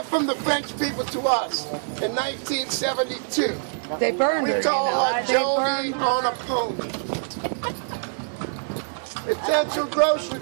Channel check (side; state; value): left; silent; 62 dB below the other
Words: from the French people to us in 1972. They burned her, We you call know. her They Joni burned her. on a pony. Essential Grocery